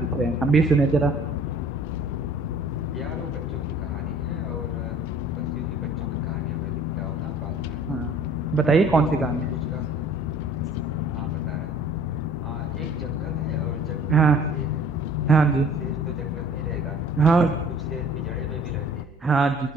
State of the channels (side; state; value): right; noise; hum, 25 dB below the sound